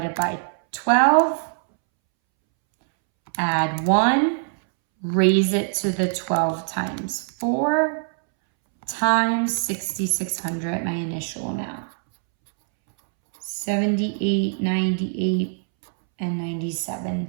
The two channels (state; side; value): silent; left; 63 dB below the other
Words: by 12, add 1, raise it to the 12 times 4, times 6,600, my initial amount. 78, 98, and 97